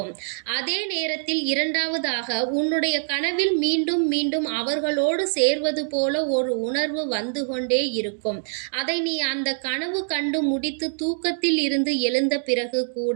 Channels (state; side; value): silent; left; digital silence